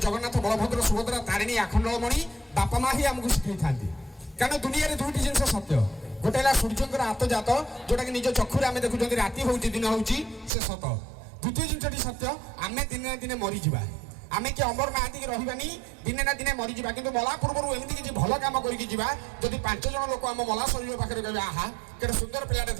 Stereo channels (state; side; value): drops out; left; at 10.5 s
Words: बलभद्र सुभद्रा तारिणी आखंडमणि बापा माँ ही आमको शिखी था कारण दुनिया दुईटी जिन सत्य गोटे सूर्य हाथ जात जोटा कि निज चक्षुरे आम देखुं राति हूँ दिन हूँ से सत द्वितीय जिनटी सत्य आम दिन ना दिन मरीजा आम कि अमर महाती रही दिने ना दिने मरीजा कि मला पूर्व एमती किसी भल कम करके जब 5 जन लोक आम मला शरीर पाखे कहे आहा के सुंदर पिलाटे